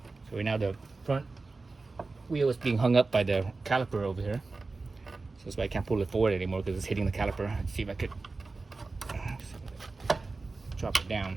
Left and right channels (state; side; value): quieter; left; 3.7 dB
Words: So right now the front wheel is being hung up by the caliper over here. So that's why I can't pull it forward anymore, because it's hitting the caliper. Let's see if I could drop it